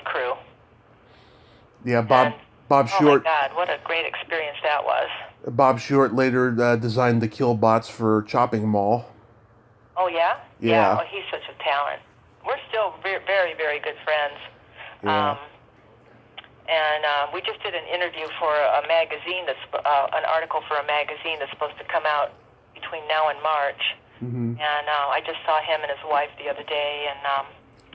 crew. Yeah, Bob Short. Oh my God, what a great experience that was. Bob Short later designed the kill bots for Chopping Mall. Oh, yeah? Yeah. Oh, he's such a talent. We're still very, very good friends. Yeah. And we just did an interview for a magazine an article for a magazine that's supposed to come out between now and March. And I just saw him and his wife the other day, and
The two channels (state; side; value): identical; both; correlation 1.00